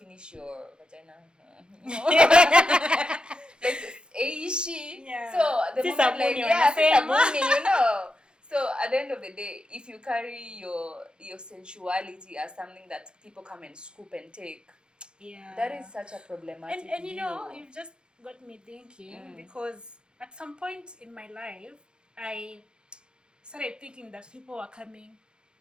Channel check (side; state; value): left; late; 0.049 ms